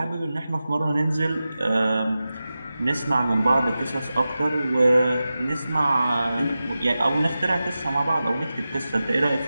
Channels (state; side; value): inverted; both; correlation -0.94